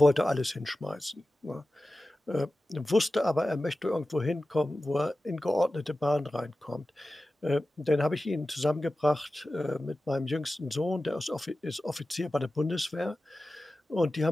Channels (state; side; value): normal; both; correlation 0.95